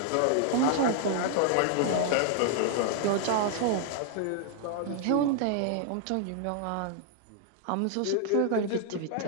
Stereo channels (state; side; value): different; both; correlation 0.00